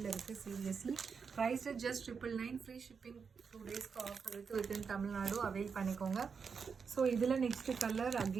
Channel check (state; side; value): quieter; left; 5.8 dB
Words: இருக்குது seriously. Price just 999. Free shipping 2 டேஸ்க்கு ஆஃபர் இருக்குது வித்தின் தமிழ்நாடு, அவைல் பண்ணிக்கோங்க. ஸோ இதில் நெக்ஸ்ட் கலர்